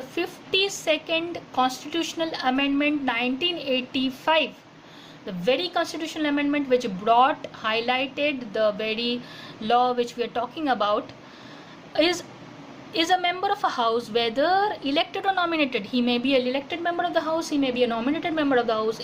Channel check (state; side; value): identical; both; correlation 1.00